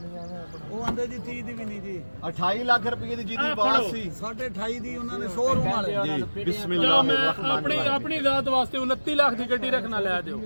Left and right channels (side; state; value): both; inverted; correlation -1.00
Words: ਉਹ ਆਂਦੇ ਜੀ 30 ਦੀ ਵੀ ਨਹੀਂ ਜੀ 28 ਲੱਖ ਰੁਪਏ ਦੀ ਜਿਹਦੀ ਆਵਾਜ਼ ਸੀ 28.5 ਦੀ ਉਹਨਾਂ ਨੇ ਸ਼ੋਰੂਮ ਵਾਲੇ ਜੀ ਚਲੋ ਬਿਸਮਿਲ੍ਲਾਹ ਮੈਂ ਆਪਣੀ ਜ਼ਾਤ ਵਾਸਤੇ 29 ਲੱਖ ਦੀ ਗੱਡੀ ਰੱਖਣਾ ਲੈ